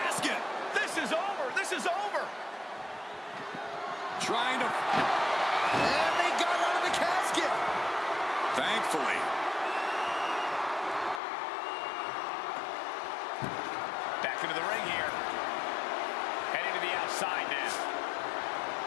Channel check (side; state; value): right; drops out; at 11.2 s